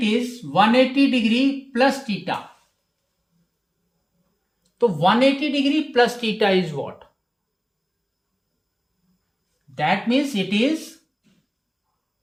is 180 degree plus theta. So 180 degree plus theta is what? That means it is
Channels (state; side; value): identical; both; correlation 1.00